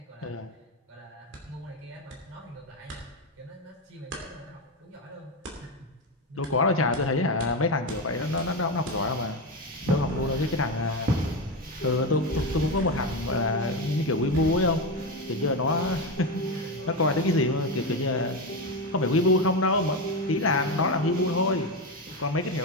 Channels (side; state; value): both; normal; correlation 0.14